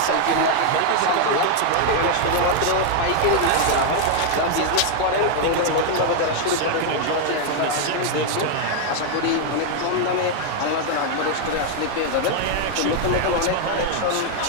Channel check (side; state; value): both; different; correlation 0.00